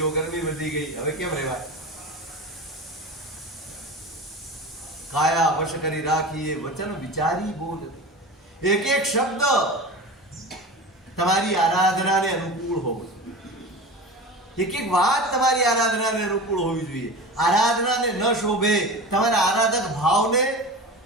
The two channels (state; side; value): normal; both; correlation 0.31